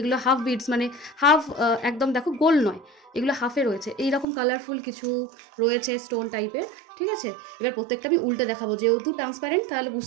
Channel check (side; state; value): left; drops out; at 4.2 s